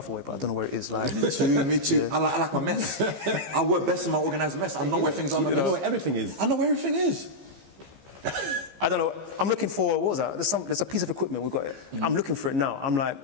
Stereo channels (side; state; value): left; late; 15 ms